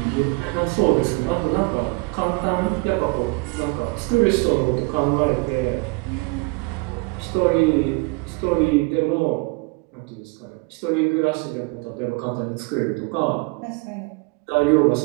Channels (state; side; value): quieter; left; 28.5 dB